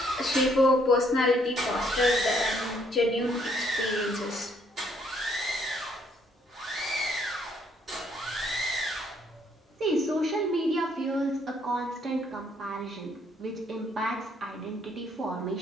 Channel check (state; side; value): normal; both; correlation 0.68